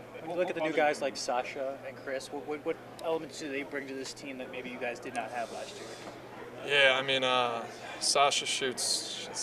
When you look at the new guys like Sasha and Chris, what elements do they bring to this team that maybe you guys did not have last year? Yeah, Sasha shoots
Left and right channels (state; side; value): identical; both; correlation 1.00